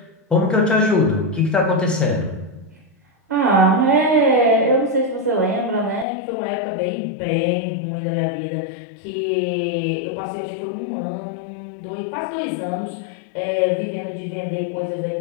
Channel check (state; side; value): drops out; right; at 6.1 s